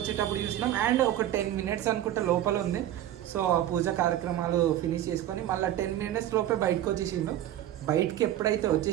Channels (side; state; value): left; quieter; 12.4 dB